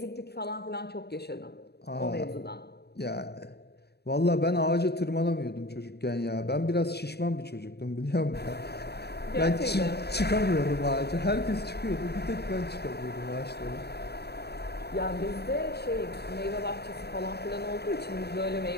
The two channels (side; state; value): right; late; 0.48 ms